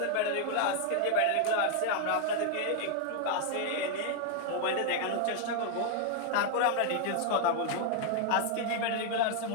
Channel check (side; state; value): both; different; correlation 0.00